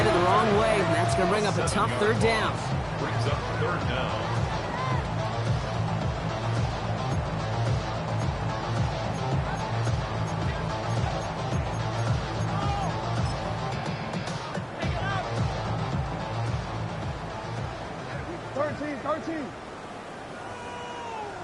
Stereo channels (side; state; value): both; identical; correlation 1.00